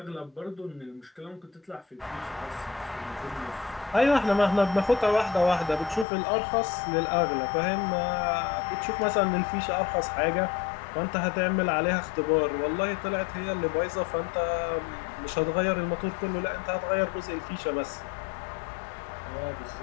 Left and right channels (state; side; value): drops out; right; at 6.1 s